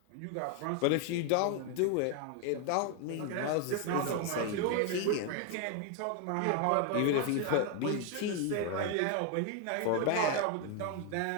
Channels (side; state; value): both; different; correlation 0.01